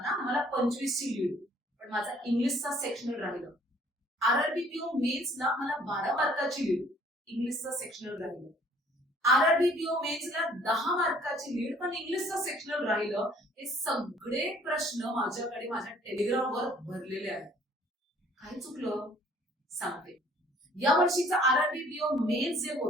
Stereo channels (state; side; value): normal; both; correlation 0.57